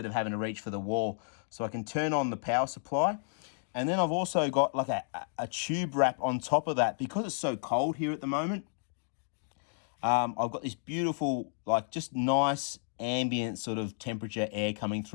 of having to reach for the wall. So I can turn on the power supply. And then I've also got like a tube wrap on top of that. Because it's so cold here at the moment, I've got this beautiful, like just nice ambient sort of temperature air coming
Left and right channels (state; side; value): silent; right; digital silence